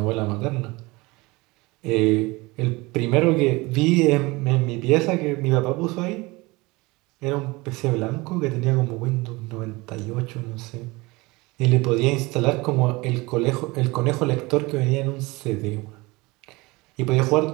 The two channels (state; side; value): quieter; left; 23.2 dB